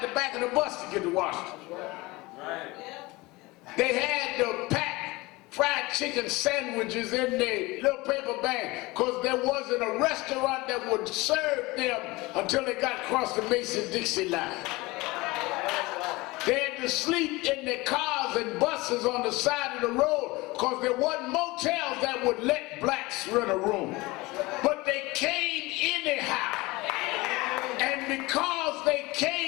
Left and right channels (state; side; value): quieter; right; 22.0 dB